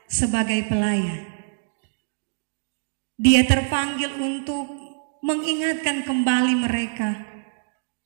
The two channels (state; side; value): silent; left; digital silence